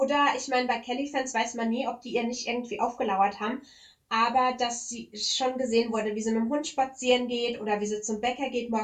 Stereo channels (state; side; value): identical; both; correlation 1.00